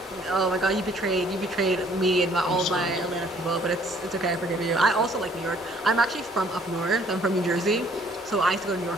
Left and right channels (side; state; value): both; normal; correlation 0.60